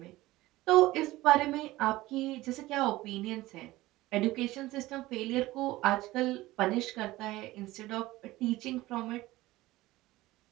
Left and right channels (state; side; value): quieter; left; 18.0 dB